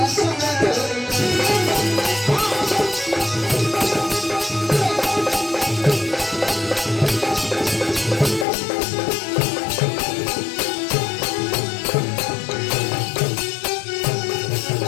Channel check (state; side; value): drops out; right; at 8.5 s